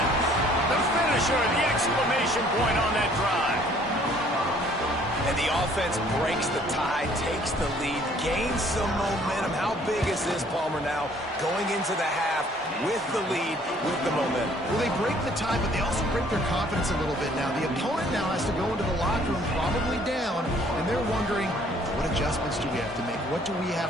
The finisher, the exclamation point on that drive. And the offense breaks the tie, takes the lead, gains some momentum. How big is this, Palmer, now? Going into the half with the lead, with the momentum. Well, they break the tie, but they also break their confidence a little bit now. The opponent now has to go into the locker room probably down, and they're wondering, what adjustments do we have to make? What do we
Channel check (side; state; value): both; normal; correlation 0.59